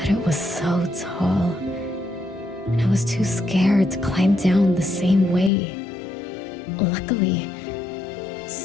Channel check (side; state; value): right; drops out; at 5.5 s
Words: it was so tall, and I was too scared to climb down the same way. Luckily,